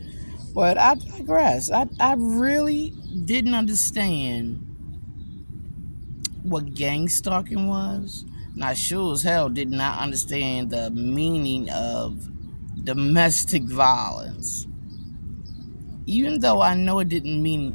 But I digress. I really didn't understand what gang stalking was. And I sure as hell did not understand the meaning of domestic violence. Even though I know it didn't mean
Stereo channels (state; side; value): inverted; both; correlation -1.00